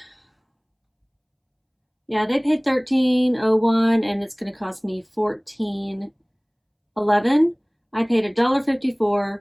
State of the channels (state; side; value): identical; both; correlation 1.00